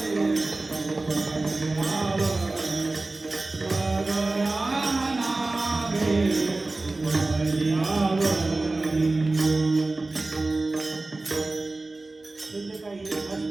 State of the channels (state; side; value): quieter; left; 3.2 dB